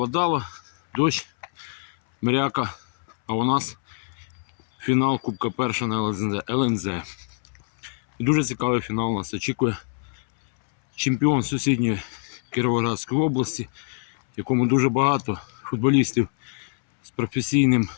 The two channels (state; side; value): silent; right; 62 dB below the other